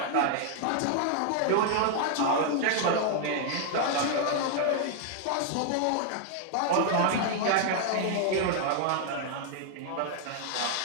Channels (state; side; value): different; both; correlation 0.00